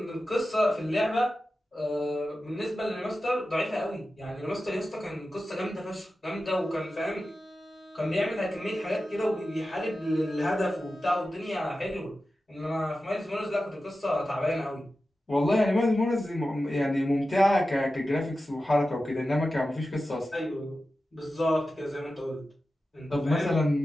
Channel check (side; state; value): both; normal; correlation 0.93